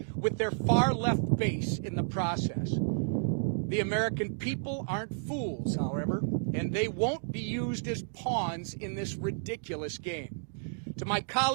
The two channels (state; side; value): silent; left; digital silence